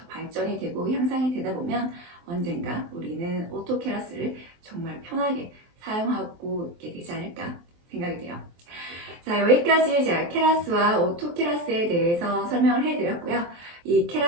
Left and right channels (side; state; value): left; late; 23 ms